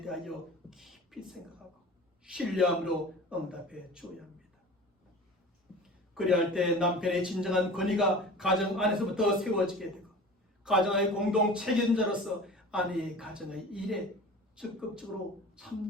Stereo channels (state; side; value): normal; both; correlation 0.38